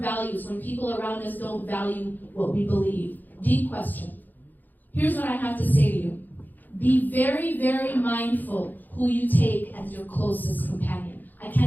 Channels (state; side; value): late; right; 0.086 ms